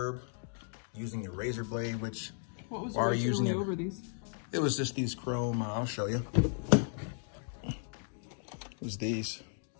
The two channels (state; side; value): silent; right; 54 dB below the other